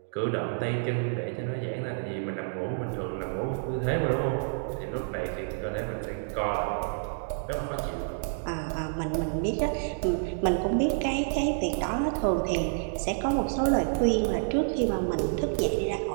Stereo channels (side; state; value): left; silent; digital silence